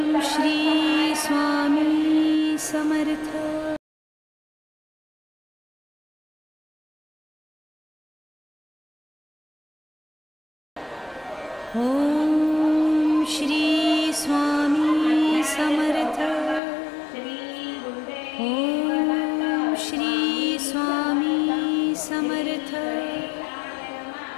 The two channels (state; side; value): drops out; right; at 16.6 s